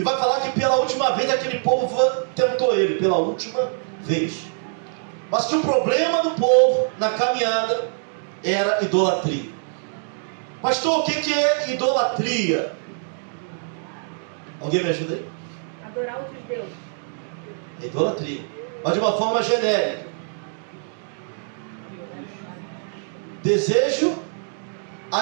vai falar que pela última vez aquele povo tentou ele, pela última vez. Mas que o problema do povo na caminhada era idolatria. Pastor, o que é idolatria? Alguém me ajuda aí? Adorar outros deuses. É idolatria, mas de uma forma genérica. Desejo,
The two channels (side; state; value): left; silent; digital silence